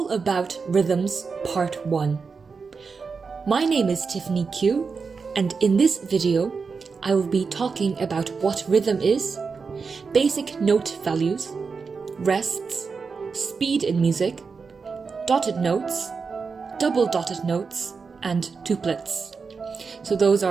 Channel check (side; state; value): left; quieter; 5.0 dB